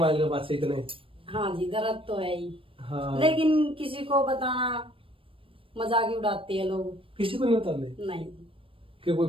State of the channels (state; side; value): late; left; 0.26 ms